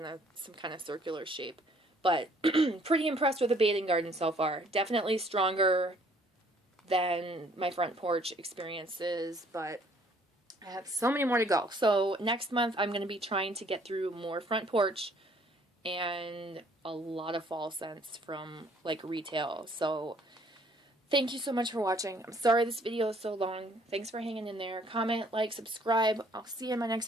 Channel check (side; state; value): both; normal; correlation 0.60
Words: some kind of circular shape. But pretty impressed with the Bathing Garden so far. Definitely stronger than my Front Porch experiences, but I have so many more to go. So next month I'm going to be trying to get through more Front Porch and a lot of fall scents from like retail. So thank you so much for watching. I'm sorry this video is so long. Thanks for hanging in there. Comment, like, subscribe. I'll see you in my next